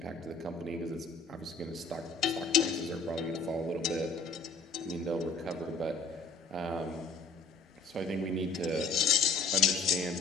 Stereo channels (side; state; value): right; quieter; 3.9 dB